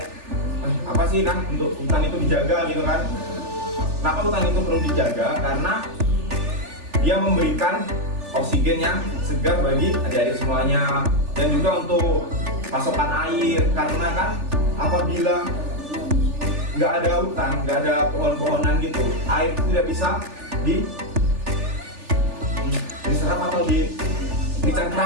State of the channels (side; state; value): left; late; 3.4 ms